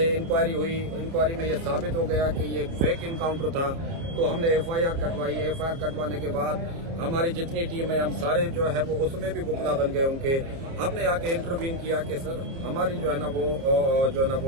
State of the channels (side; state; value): left; late; 30 ms